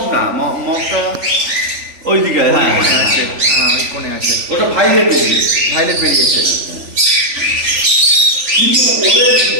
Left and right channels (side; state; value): left; late; 3.4 ms